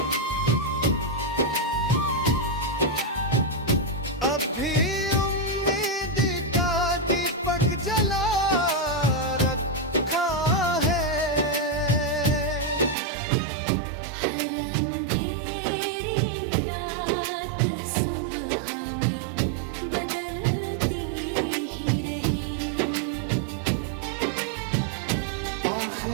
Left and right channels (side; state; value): left; drops out; at 13.0 s